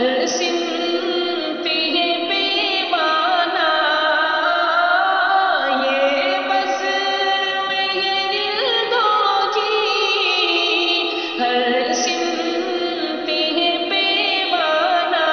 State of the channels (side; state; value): both; identical; correlation 1.00